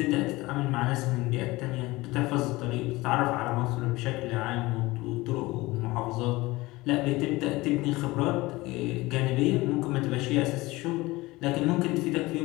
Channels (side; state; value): right; quieter; 20.7 dB